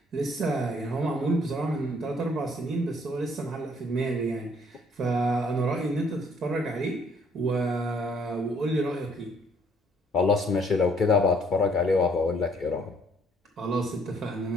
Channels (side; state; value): both; normal; correlation 0.63